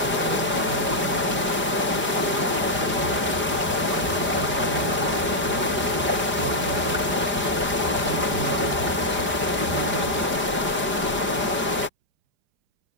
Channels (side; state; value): left; late; 5.0 ms